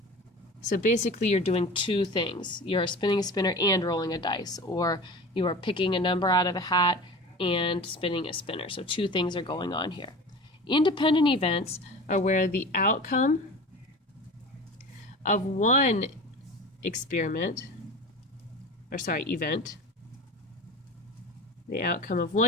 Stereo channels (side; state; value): both; normal; correlation 0.35